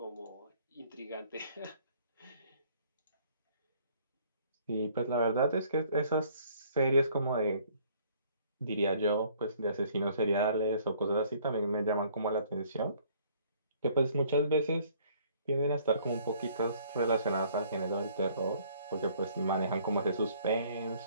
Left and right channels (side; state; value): both; inverted; correlation -0.60